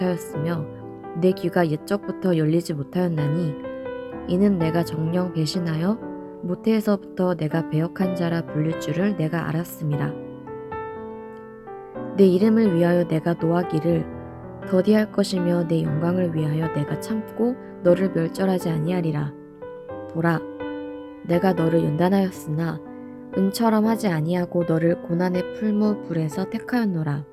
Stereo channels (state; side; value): identical; both; correlation 1.00